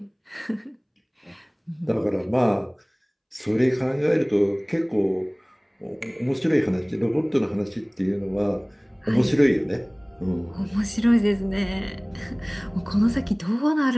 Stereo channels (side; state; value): both; identical; correlation 1.00